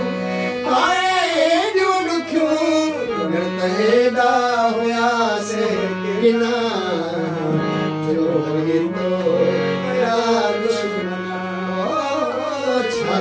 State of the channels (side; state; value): both; identical; correlation 1.00